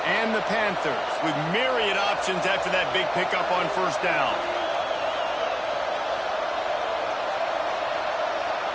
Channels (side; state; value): both; identical; correlation 1.00